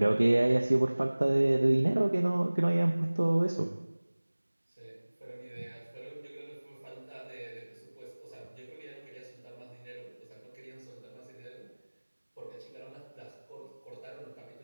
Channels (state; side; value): inverted; both; correlation -1.00